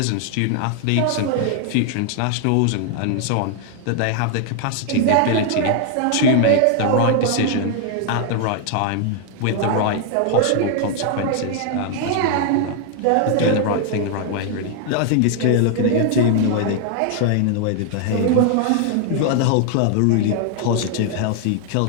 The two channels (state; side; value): different; both; correlation 0.00